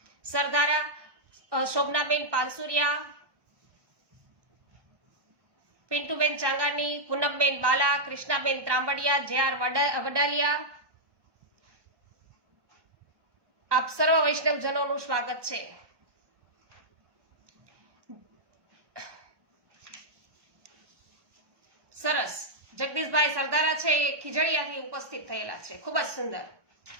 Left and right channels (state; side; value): late; left; 1.2 ms